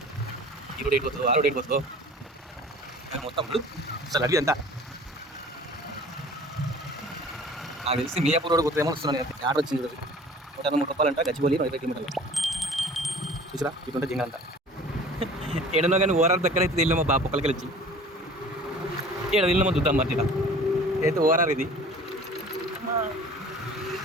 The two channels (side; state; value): both; normal; correlation 0.46